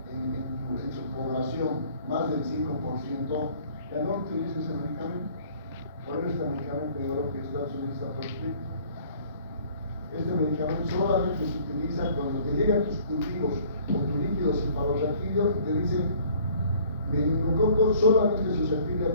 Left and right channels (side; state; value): both; inverted; correlation -0.54